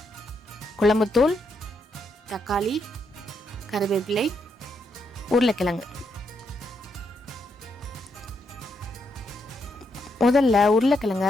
குழம்புத்தூள், தக்காளி, கருவேப்பிலை, உருளைக்கிழங்கு. முதல்ல உருளைக்கிழங்க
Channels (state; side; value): normal; both; correlation 0.79